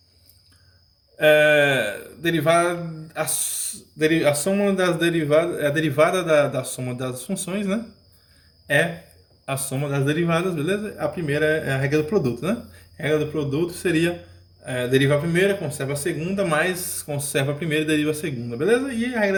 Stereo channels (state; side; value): identical; both; correlation 1.00